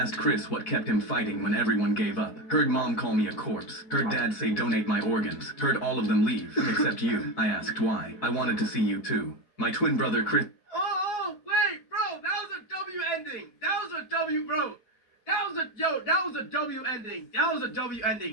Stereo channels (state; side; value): late; right; 4.0 ms